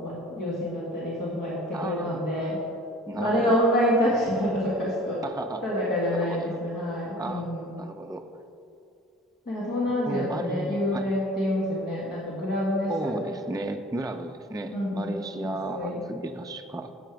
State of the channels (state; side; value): normal; both; correlation 0.47